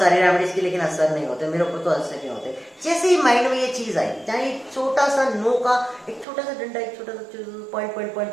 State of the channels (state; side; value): drops out; left; at 6.2 s